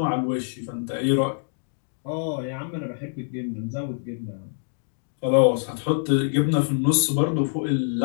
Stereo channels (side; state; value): right; silent; digital silence